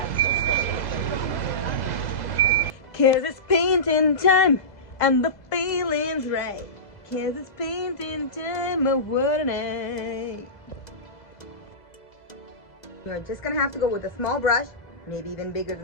'Cause it's painting time and the feeling's right. 'Cause it's painting time, oh what a night. You're just gonna have to go with a small brush, maybe even bigger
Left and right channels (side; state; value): right; late; 2.0 ms